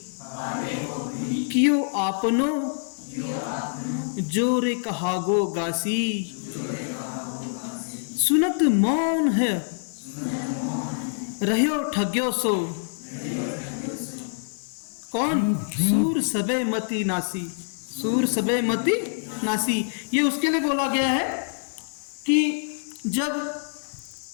कियो आपनो, जोरे कहागो गासी। सुनत मौन है रह्यो ठग्यो सो, कौन सूर सबे मति नासी। सूर सबे मति नासी, ये उसके लिए बोला गया है कि जब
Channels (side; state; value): right; silent; digital silence